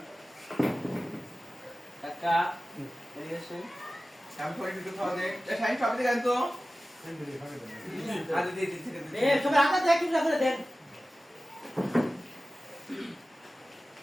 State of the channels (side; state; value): both; normal; correlation 0.96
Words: কাকা দেখাছে আমি করে দিতে খাওয়া দে এ সাইন সব দিকে আনতো আরে দিয়ে দিতে এ সব আটা দেখ কি করে দেন